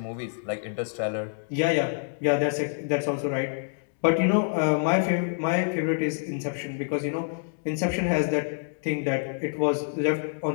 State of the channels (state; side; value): silent; right; digital silence